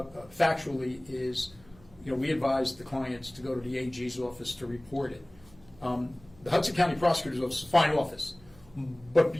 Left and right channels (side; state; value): right; noise; hum, 25 dB below the sound